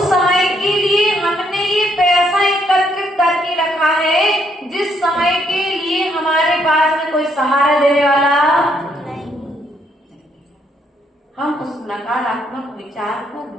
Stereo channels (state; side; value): normal; both; correlation 0.72